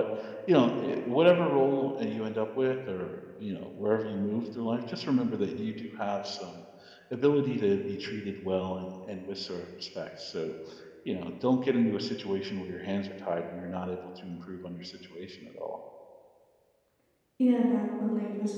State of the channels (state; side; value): identical; both; correlation 1.00